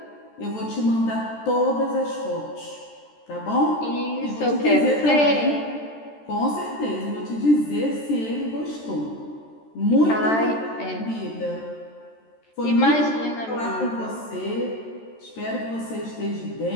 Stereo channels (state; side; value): late; right; 13 ms